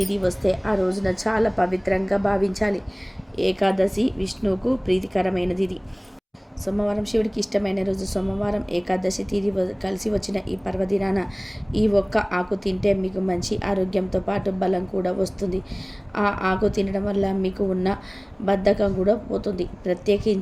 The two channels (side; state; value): both; identical; correlation 1.00